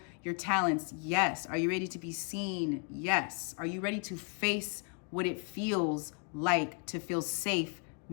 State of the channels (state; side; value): quieter; right; 35.9 dB